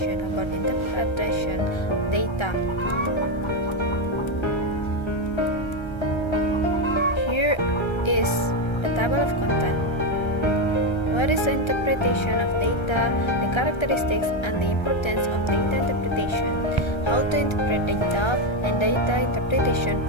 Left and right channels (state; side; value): late; right; 1.3 ms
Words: about interpretation data. Here is the table of content. What is the interpretation of data, the characteristics and the importance of data interpretation, how to interpret data, and data interpretation